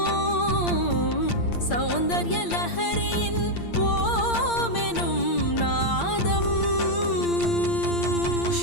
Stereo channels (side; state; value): right; late; 8.7 ms